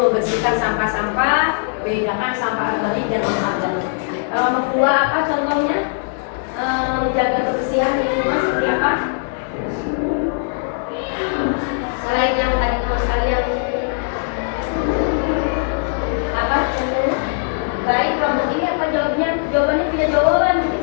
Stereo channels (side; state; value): right; silent; 59 dB below the other